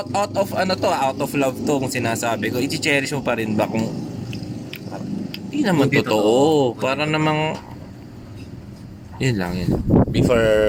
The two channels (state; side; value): identical; both; correlation 1.00